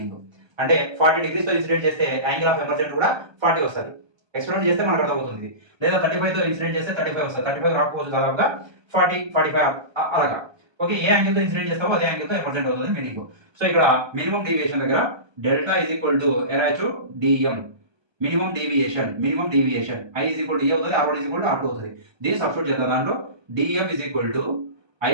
అంటే 40 degrees తో ఇన్సిడెంట్ చేస్తే యాంగిల్ ఆఫ్ ఎమర్జెన్స్ కూడా 40 వస్తుంది. ఎక్స్పెరిమెంట్ చేస్తే మనకు అర్థమవుతుంది. లేదా 35 తో ఇన్సిడెంట్ చేస్తే 35 వస్తుంది. 35 రాకపోవచ్చు, దాదాపుగా 40, 45 అలాగా. ఓకే, ఏ యాంగిల్ తో ఇన్సిడెంట్ చేస్తావో అదే యాంగిల్ తో ఎమర్జెంట్ అవుతుంది మీనింగ్. సో ఇక్కడ మినిమం డీవియేషన్ దగ్గర డెల్టా ఈజ్ ఈక్వల్ టు ఎరాచు DM, minimum deviation I is equal to A అవుతుంది, R one is equal to R two అవుతుంది. దీన్ని సబ్స్టిట్యూట్ చేద్దాం. దాంట్లో DM is equal to I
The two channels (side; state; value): left; late; 1.3 ms